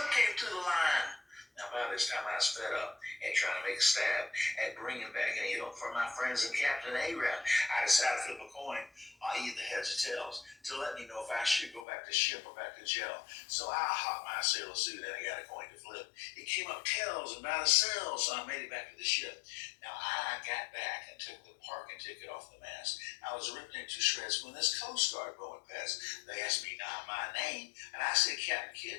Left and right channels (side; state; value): right; drops out; at 11.8 s